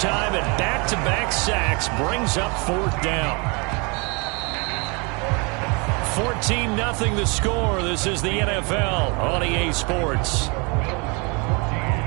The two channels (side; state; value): left; quieter; 31.0 dB